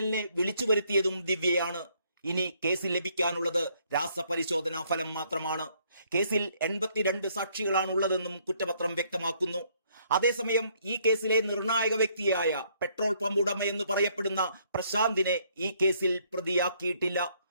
വിളിച്ചു വരുത്തിയതും ദിവ്യയാണ്. ഇനി കേസിൽ ലഭിക്കാനുള്ളത് രാസപരിശോധനാ ഫലം മാത്രമാണ്. കേസിൽ 82 സാക്ഷികളാണുള്ളതെന്നും കുറ്റപത്രം വ്യക്തമാക്കുന്നു. അതേസമയം ഈ കേസിലെ നിർണായക വ്യക്തിയായ പെട്രോൾ പമ്പ് ഉടമയെന്ന് പറയപ്പെടുന്ന പ്രശാന്തിനെ ഈ കേസിൽ പ്രതിയാക്കിയിട്ടില്ല.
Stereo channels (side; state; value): both; inverted; correlation -0.68